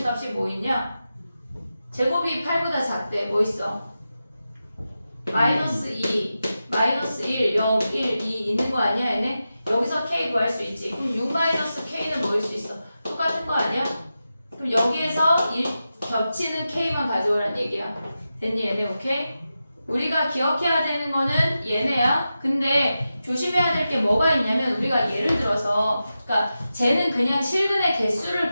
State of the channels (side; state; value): both; inverted; correlation -0.91